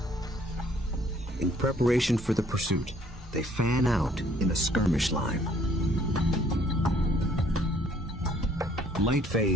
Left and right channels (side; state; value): both; normal; correlation 0.61